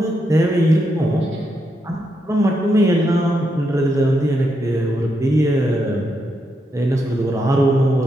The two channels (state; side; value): normal; both; correlation 0.82